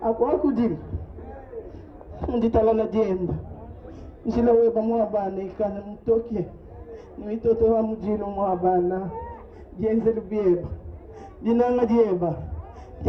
akwa kujili nditalala jemba njila weba mwabana ikana mtoke nimitoto wa mujilu mwabana jenze lubieba dinanga dieba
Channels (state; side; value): identical; both; correlation 1.00